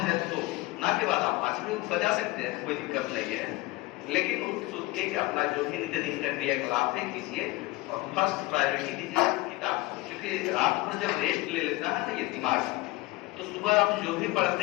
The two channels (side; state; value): right; quieter; 20.4 dB